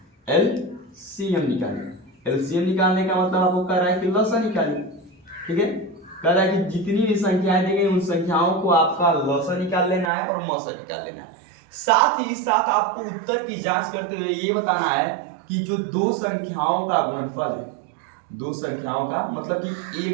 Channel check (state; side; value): drops out; left; at 10.1 s